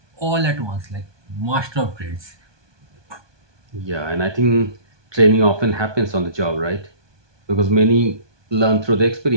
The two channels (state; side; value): late; left; 1.2 ms